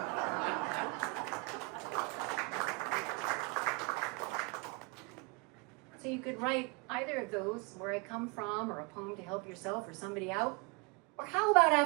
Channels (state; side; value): quieter; left; 28.2 dB